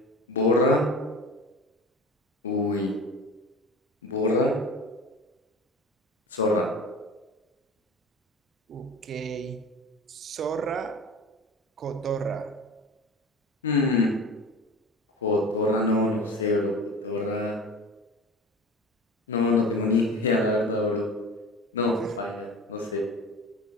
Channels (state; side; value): normal; both; correlation 0.35